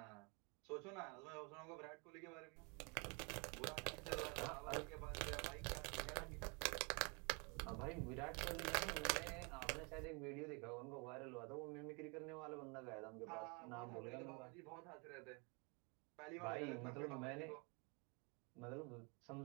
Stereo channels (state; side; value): quieter; left; 33.0 dB